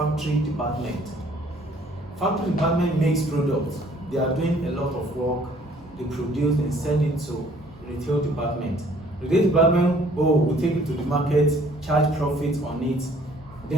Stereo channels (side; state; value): both; normal; correlation 0.58